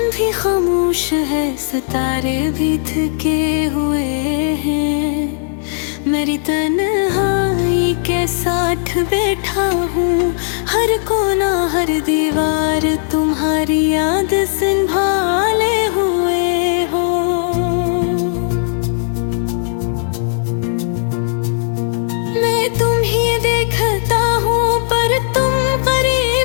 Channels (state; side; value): silent; right; digital silence